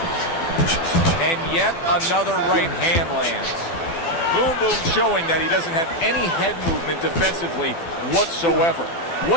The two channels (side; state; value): right; late; 12 ms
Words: And yet another right hand lands. Boom Boom showing that he doesn't have any head movement defensively whatsoever.